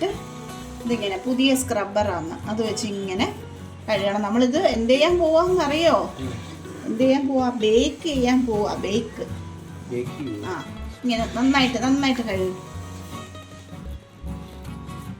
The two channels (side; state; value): both; identical; correlation 1.00